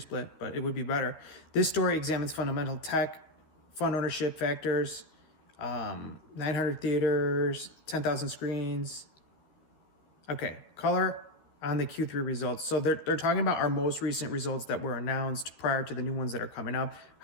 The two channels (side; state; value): right; late; 13 ms